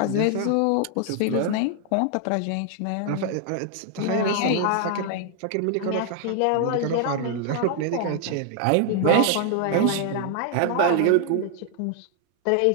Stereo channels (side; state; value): both; different; correlation 0.00